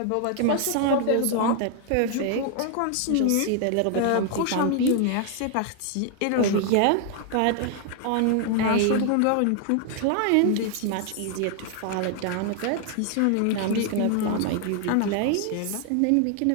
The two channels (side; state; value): both; different; correlation 0.00